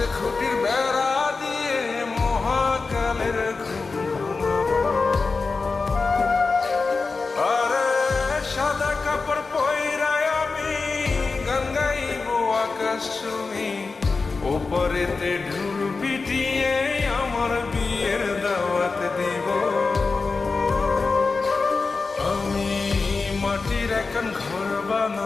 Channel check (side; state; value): right; quieter; 4.2 dB